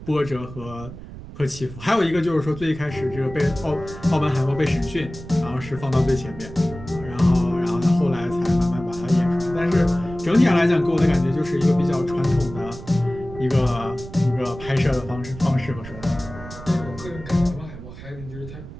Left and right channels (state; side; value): noise; right; rumble, 14 dB below the sound